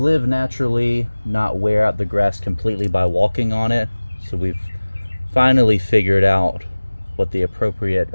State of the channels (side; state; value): both; inverted; correlation -1.00